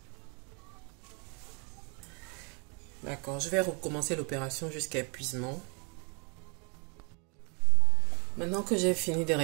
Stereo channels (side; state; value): left; quieter; 34.2 dB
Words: D'accord, je vais recommencer l'opération jusqu'à épuisement. Maintenant que j'ai fini de